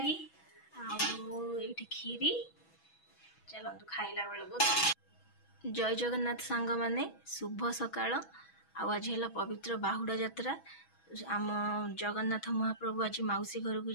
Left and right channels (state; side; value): late; right; 6.1 ms